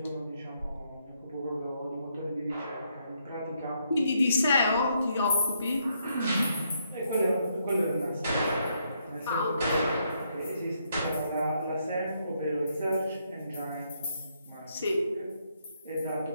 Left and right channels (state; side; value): inverted; both; correlation -0.75